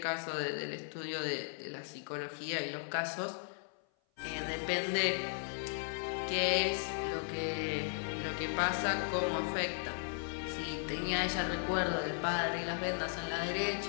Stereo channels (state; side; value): silent; right; 54 dB below the other